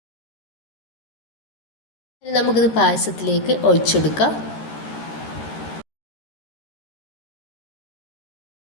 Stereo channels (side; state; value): right; late; 13 ms